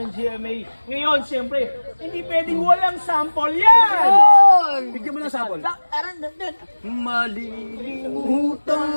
GMA. Ngayon, siyempre, hindi pwedeng walang sample yan! Bigyan mo ng sample. Malilimutan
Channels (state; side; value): inverted; both; correlation -1.00